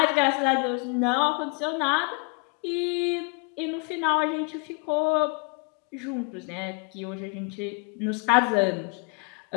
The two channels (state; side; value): quieter; right; 32.7 dB